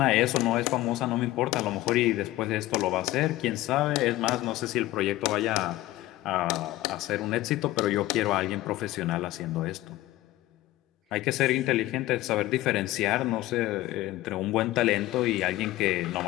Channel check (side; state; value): right; quieter; 16.7 dB